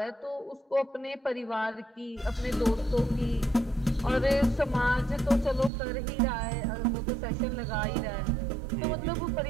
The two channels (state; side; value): drops out; left; at 5.7 s